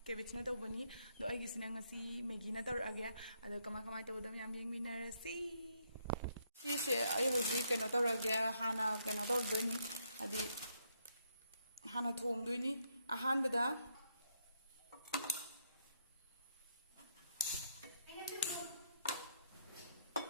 केबेज ना तौबनी दो आइगिसिना ngasi मैगी ना तौरगे अदो कमा तौदम याम येंगमिनरसी सिसे आइ हजिक कइनो तौरगे हाना कइनो तौदोइनी अदि हाना थोंदोइनी अहानबदा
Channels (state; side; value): inverted; both; correlation -0.75